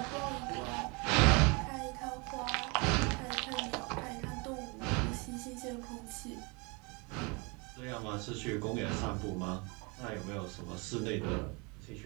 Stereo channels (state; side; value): quieter; left; 29.8 dB